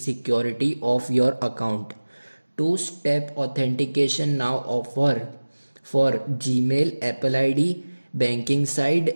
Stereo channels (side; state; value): both; inverted; correlation -1.00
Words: of your account. Two-step authentication now offer for Gmail, Apple ID, banking